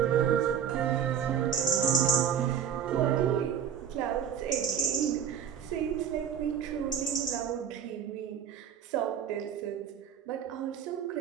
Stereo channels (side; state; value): left; quieter; 8.4 dB